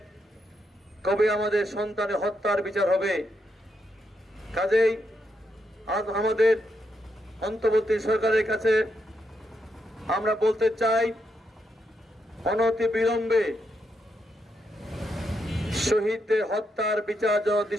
কবে আমাদের সন্তানের হত্যার বিচার হবে। কাজেই আজ আমাদের অন্তর্বর্তী সরকারের কাছে আমরা বলতে চাই, অনতি বিলম্বে শহীদদের হত্যার বিচার যেন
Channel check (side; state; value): both; normal; correlation 0.81